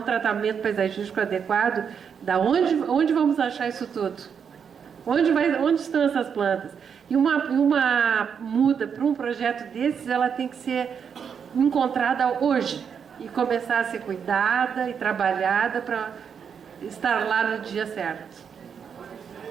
tratamento paisagístico adequado, onde vamos achar isso tudo? Onde estão essas plantas? E uma muda para um projeto desses, ela tem que ser encontrada hoje e começar a ser cuidada e trabalhada para estar lá no dia certo.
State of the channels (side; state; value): left; quieter; 7.1 dB